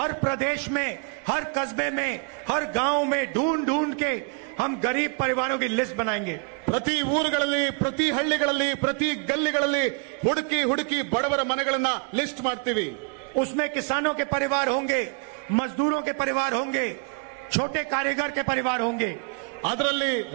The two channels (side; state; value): left; quieter; 35.7 dB